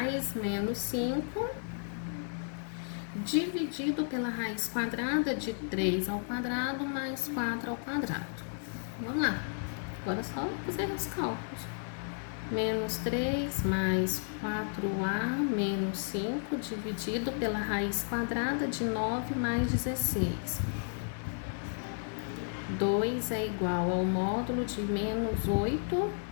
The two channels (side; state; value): right; silent; digital silence